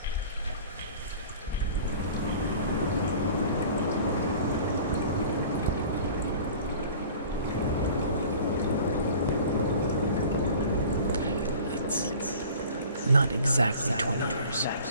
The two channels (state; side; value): inverted; both; correlation -0.45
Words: It's not exactly 20 years.